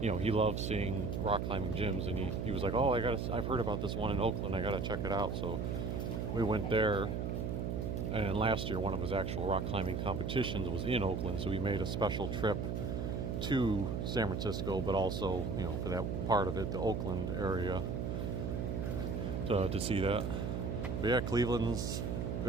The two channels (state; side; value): noise; right; hum, 1 dB below the sound